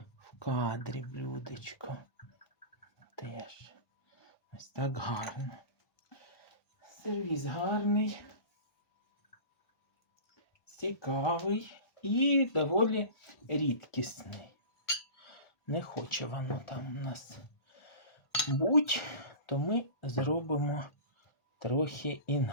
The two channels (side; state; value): right; late; 1.4 ms